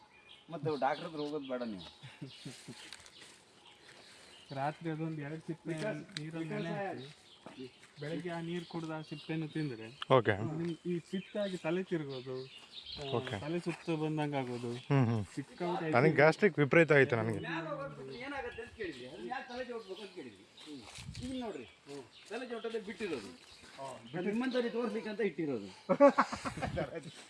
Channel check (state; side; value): identical; both; correlation 1.00